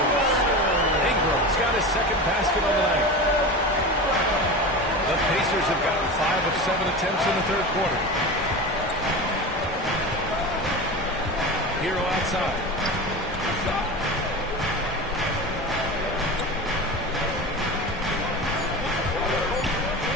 Ingram's got his 2nd basket on the night. The Pacers have gotten 5 of 7 attempts in the 3rd quarter. Hero outside.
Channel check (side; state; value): both; normal; correlation 0.28